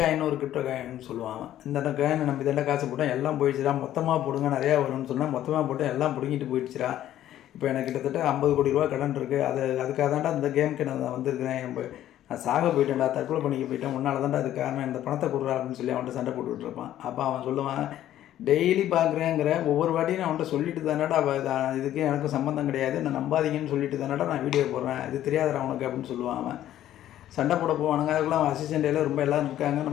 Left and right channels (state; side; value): quieter; right; 12.4 dB